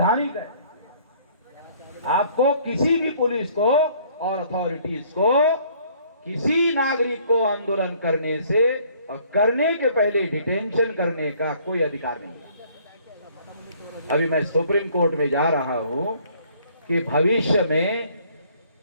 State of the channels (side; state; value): both; inverted; correlation -0.59